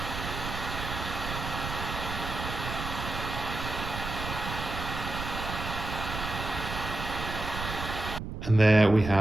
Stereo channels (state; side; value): noise; right; rumble, 6 dB below the sound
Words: And there we